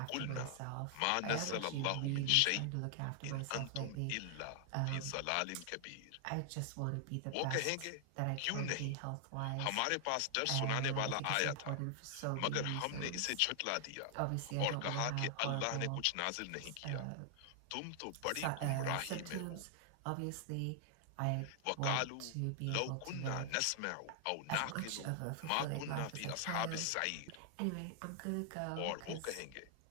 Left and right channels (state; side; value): different; both; correlation 0.00